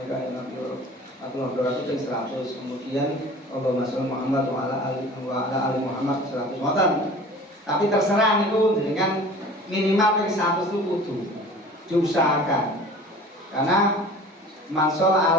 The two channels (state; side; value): normal; both; correlation 0.43